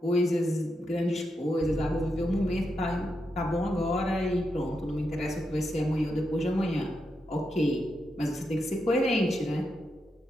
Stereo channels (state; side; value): normal; both; correlation 0.84